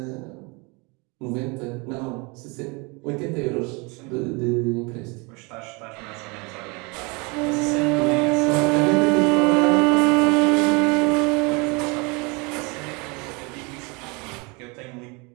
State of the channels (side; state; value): left; quieter; 29.0 dB